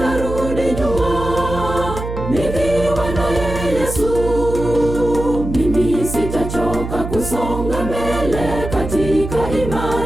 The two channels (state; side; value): noise; right; hum, 7 dB below the sound